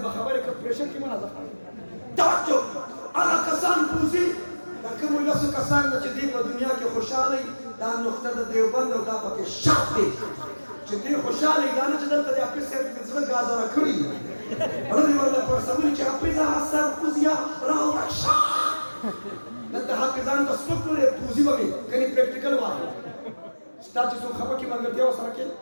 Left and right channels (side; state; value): both; inverted; correlation -1.00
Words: بخبر کا پریشر کی منازع توجہ آغا کسان پوزی لکم اللہ سے کسان نچدی و دنیا کی خوشحالی دا نقطہ دا دیوبند و دا پاکی شاک دی چدی خوشحالی دا نچدل تا دی اپیس سے بزرگ گازا رکھڑی رضی واللہ پر سمولی چا اپیزا حسر پوزیا راو رکشا دلتا حافظان دا سپک لے پوزی بمی کنی پریکٹیکل واقع تا چې څو خپه کې ملګرتیا وسره کې